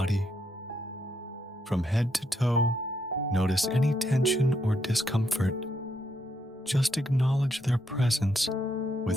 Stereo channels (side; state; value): both; normal; correlation 0.77